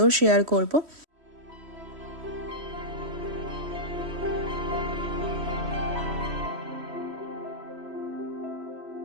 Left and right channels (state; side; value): late; left; 3.1 ms